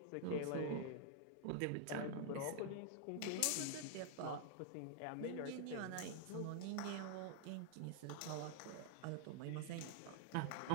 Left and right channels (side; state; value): both; different; correlation 0.00